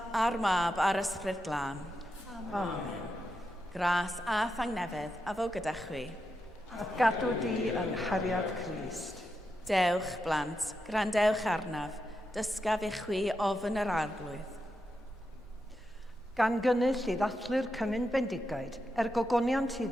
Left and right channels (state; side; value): normal; both; correlation 0.86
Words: a'r Mab, a'r Ysbryd Glân. Amen. Gras a thangnefedd a fo gyda chwi. A gadw di yng nghariad Crist. Dewch, blant, grandewch arnaf, dysgaf i chwi ofn yr arglwydd. Gan gynnull i ddathlu'r Cymun Bendigaid gogoniant i